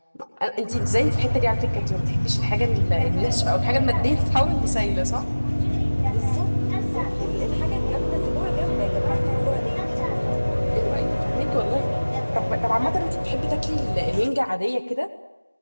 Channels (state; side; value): inverted; both; correlation -1.00